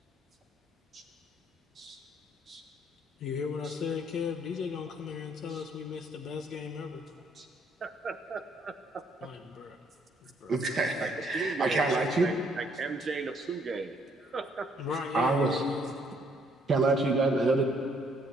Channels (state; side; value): normal; both; correlation 0.67